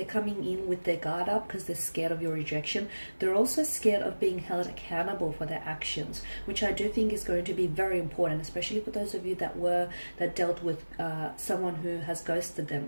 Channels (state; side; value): inverted; both; correlation -1.00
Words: coming in with their guard up because they're scared of your rejection. They're also scared of being held accountable for their actions, which I do think is going to be very important, especially for those of you that dealt with someone who has ghosted